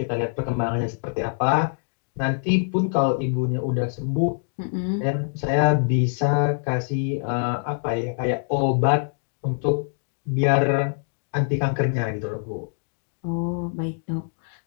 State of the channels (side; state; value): right; silent; digital silence